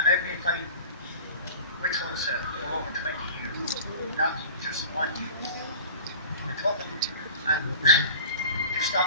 I've been fighting with TULSA for over 20 years, not just 1 year. We took them and to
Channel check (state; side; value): inverted; both; correlation -0.39